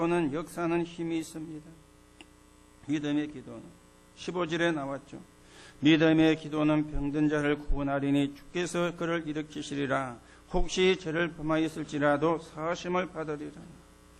역사는 힘이 있습니다. 믿음의 기도는 15절에 나왔죠. 믿음의 기도는 병든 자를 구원하리니 주께서 그를 일으키시리라. 혹시 죄를 범하였을지라도 사하심을 받으리라.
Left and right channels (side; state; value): both; identical; correlation 1.00